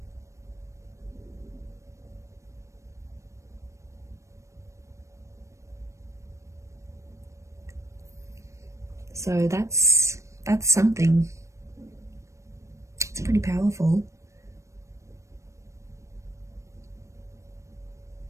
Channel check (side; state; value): left; late; 0.15 ms